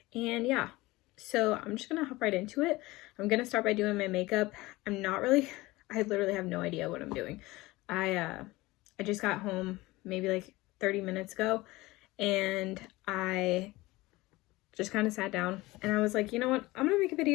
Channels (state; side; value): quieter; right; 20.3 dB